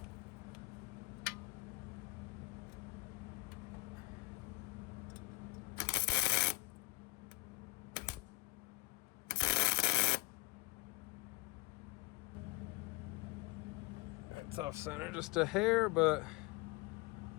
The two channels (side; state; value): right; quieter; 24.5 dB